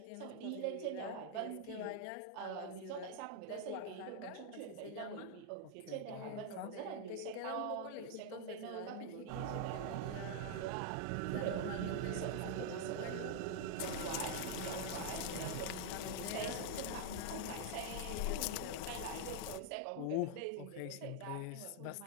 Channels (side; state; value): both; different; correlation 0.00